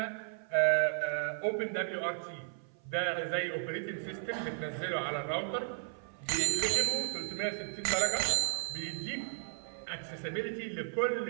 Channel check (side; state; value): left; silent; 55 dB below the other